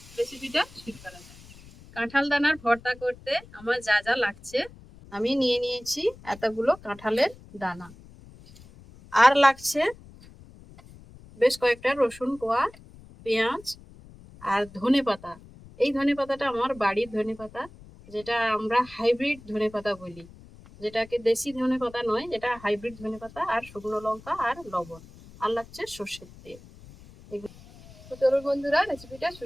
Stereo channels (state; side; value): noise; left; rumble, 21 dB below the sound